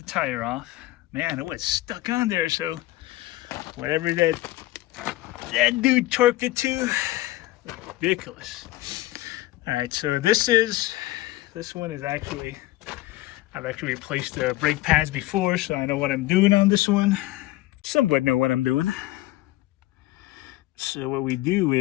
tire off. Man, it was stuck on there, so whatever that dude torqued it to, ridiculous. All right, so this one is actually, I've actually replaced the brake pads before, so I know what I'm doing on this one. Somewhat know what I'm doing. So what we do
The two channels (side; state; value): right; quieter; 17.3 dB